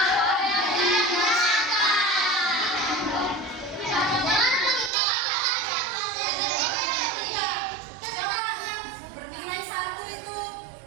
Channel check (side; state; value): left; drops out; at 4.9 s